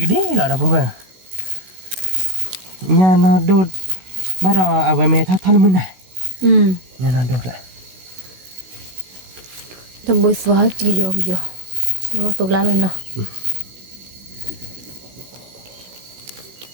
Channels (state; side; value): late; left; 16 ms